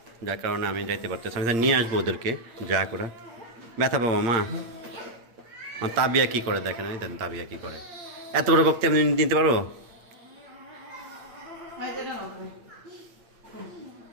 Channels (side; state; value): left; late; 8.7 ms